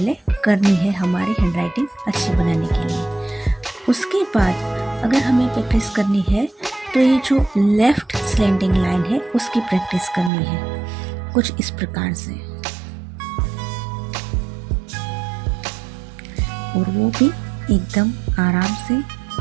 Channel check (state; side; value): drops out; left; at 10.3 s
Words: करनी है हमारी हैंडराइटिंग अच्छी बनाने के लिए। उसके बाद अगर हमें प्रैक्टिस करनी है तो ये जो लेफ़्ट स्लैंडिंग लाइन है उसकी प्रैक्टिस करनी है कुछ इस प्रकार से, और वो भी एकदम आराम से